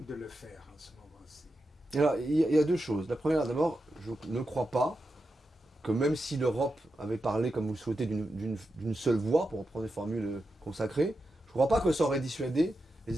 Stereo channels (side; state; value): both; normal; correlation 0.88